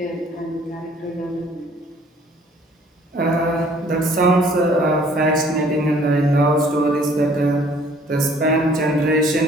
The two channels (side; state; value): both; normal; correlation 0.58